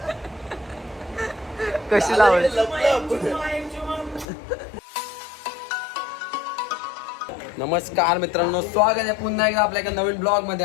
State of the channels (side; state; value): right; drops out; at 4.2 s